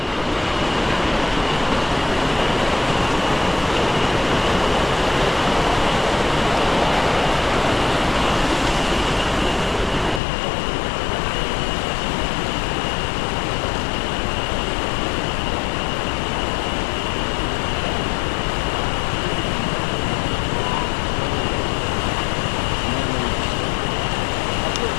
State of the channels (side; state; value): right; drops out; at 10.2 s